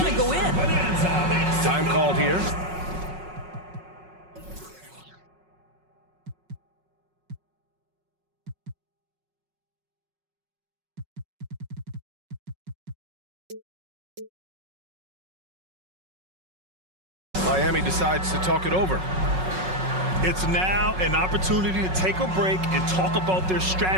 to go in. Time called here. Miami decides to talk it over. It's now an opportunity to take a break and talk about their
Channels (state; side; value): late; left; 5.4 ms